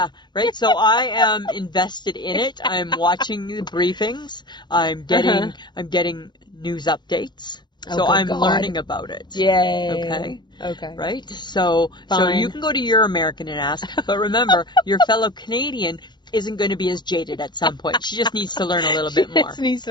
right? So I am invested in it. I'm watching the briefings. I'm getting news updates. So I'm learning about it. Yay. Okay. Right? So you can go to your American and ask. But remember, your fellow Canadian isn't going to be as jaded at some point. She just needs to learn a little bit more. She just needs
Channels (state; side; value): late; right; 0.21 ms